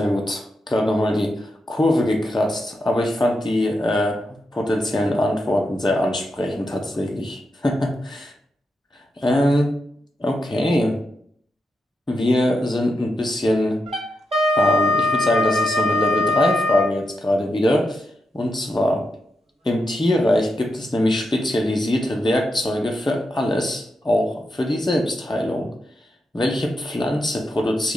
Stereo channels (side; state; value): both; normal; correlation 0.85